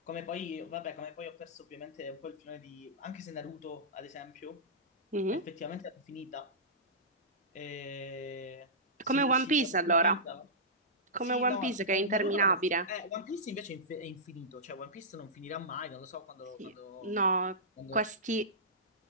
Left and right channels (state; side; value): normal; both; correlation -0.16